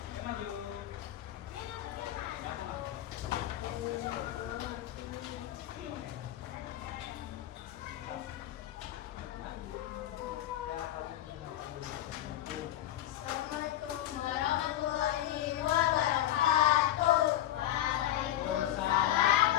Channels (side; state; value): right; quieter; 13.0 dB